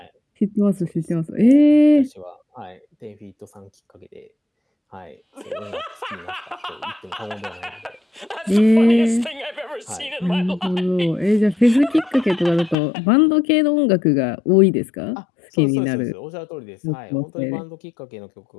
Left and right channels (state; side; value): drops out; right; at 12.8 s